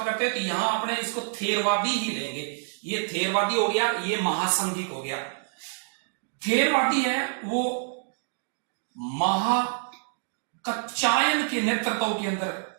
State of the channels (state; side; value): silent; left; digital silence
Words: करते हैं तो यहां अपने इसको थेरवादी ही लेंगे। ये थेरवादी हो गया, ये महासंघिक हो गया। थेरवादी है वो महाकच्चायन के नेतृत्व के अंदर